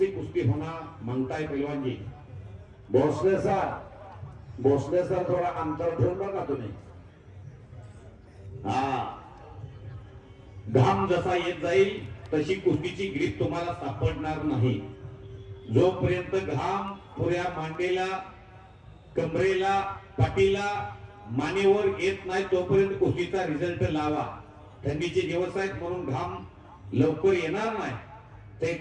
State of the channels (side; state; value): both; identical; correlation 1.00